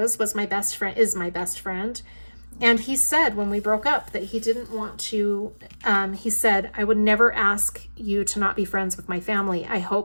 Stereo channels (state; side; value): inverted; both; correlation -1.00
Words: is my best friend. And he said when we broke up that he didn't want to, he said, I would never ask you to not be friends with my family. I